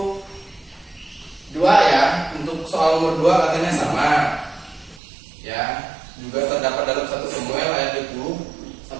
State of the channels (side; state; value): left; drops out; at 5.0 s